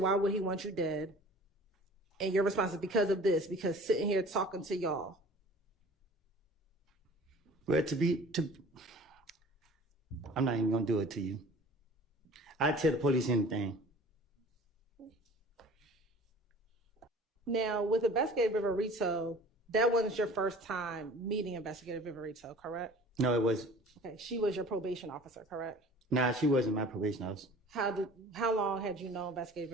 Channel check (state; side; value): normal; both; correlation 0.45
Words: why would he want you dead? And your response is, because of this, because sitting here talking to y'all. Well, I'm not even gonna do it to you. I tell the police anything. Now, with Investigator Viverito, that wasn't your first time meeting Investigator Viverito, correct? No, it was. Okay, she was your probation officer, correct? Nah, she wasn't my probation officer. How long had you known